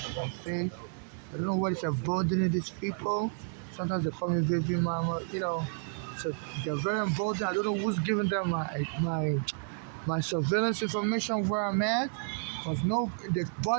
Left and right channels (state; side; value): silent; left; 57 dB below the other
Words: my face. I don't know what is emboldening these people. Sometimes they call me baby mama, So they're very emboldened. I don't know who's giving them my surveillance information where I'm at. Cause no, they